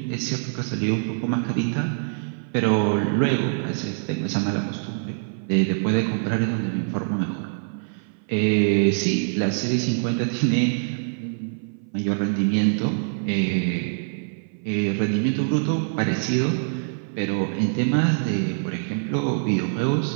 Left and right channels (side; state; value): left; silent; 57 dB below the other